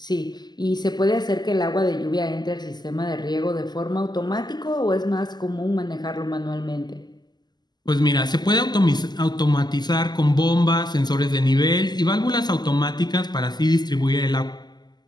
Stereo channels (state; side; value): late; right; 0.21 ms